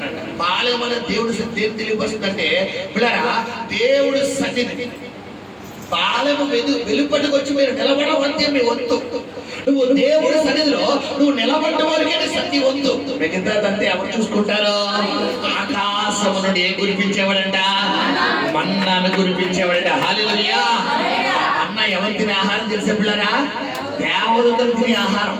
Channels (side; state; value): both; identical; correlation 1.00